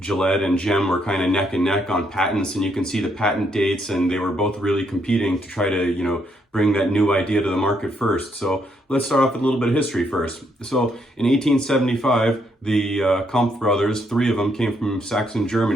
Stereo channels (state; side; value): normal; both; correlation 0.74